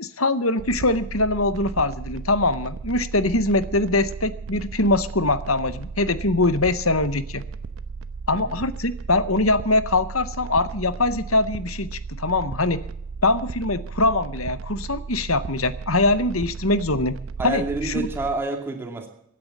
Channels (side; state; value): both; normal; correlation -0.17